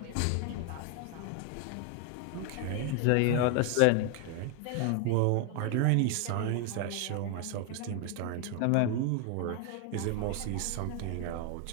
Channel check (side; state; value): both; different; correlation 0.01